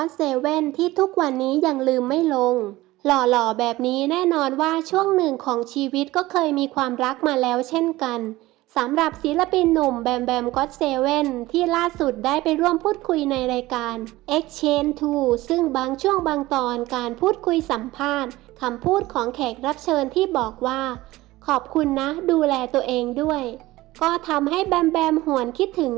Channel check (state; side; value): quieter; left; 18.2 dB